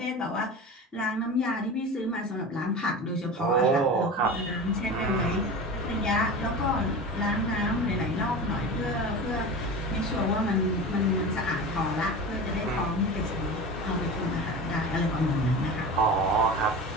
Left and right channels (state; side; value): normal; both; correlation 0.31